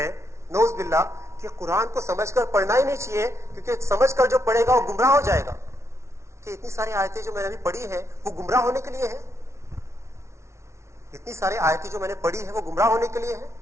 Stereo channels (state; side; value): late; left; 0.13 ms